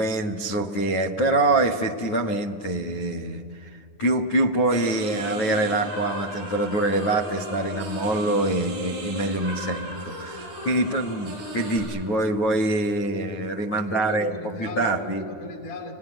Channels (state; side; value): late; right; 9.8 ms